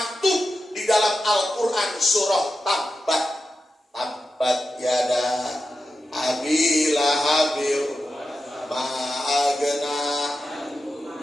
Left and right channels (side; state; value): both; normal; correlation 0.91